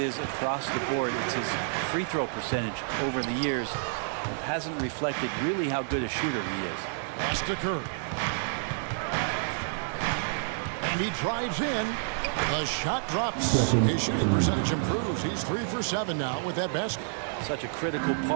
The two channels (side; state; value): left; silent; 58 dB below the other